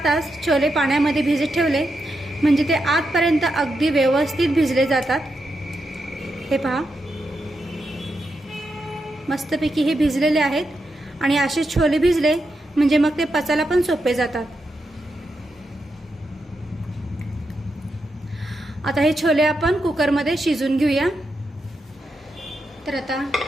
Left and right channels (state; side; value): normal; both; correlation 0.85